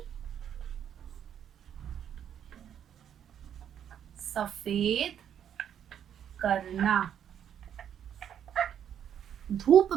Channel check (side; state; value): left; quieter; 9.3 dB